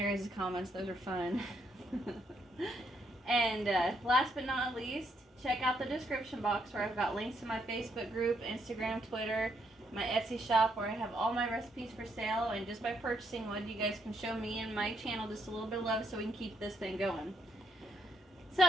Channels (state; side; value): normal; both; correlation 0.75